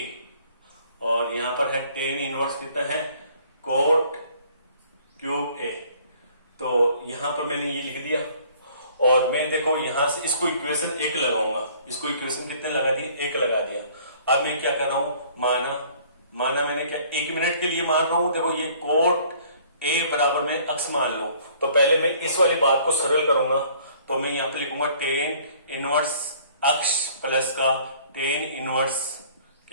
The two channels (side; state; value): both; inverted; correlation -0.56